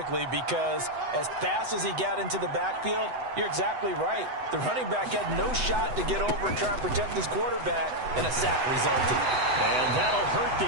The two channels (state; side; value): late; left; 8.0 ms